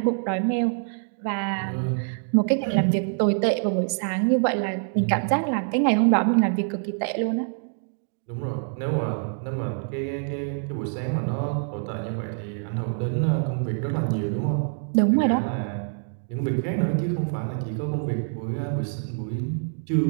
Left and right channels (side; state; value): left; silent; digital silence